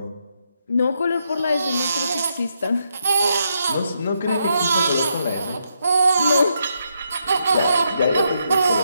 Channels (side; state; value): both; inverted; correlation -0.79